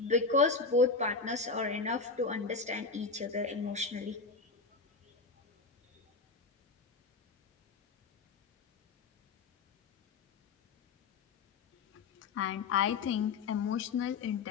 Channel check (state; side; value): quieter; right; 4.3 dB